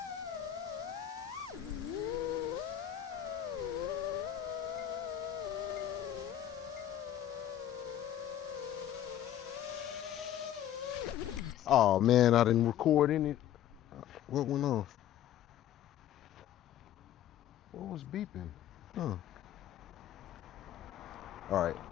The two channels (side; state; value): right; quieter; 11.3 dB